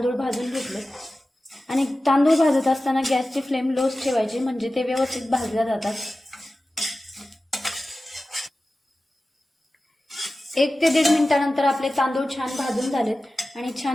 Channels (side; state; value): both; normal; correlation 0.95